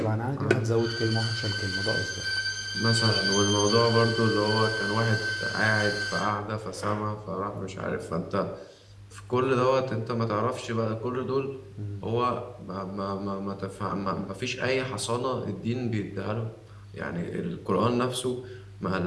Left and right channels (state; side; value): identical; both; correlation 1.00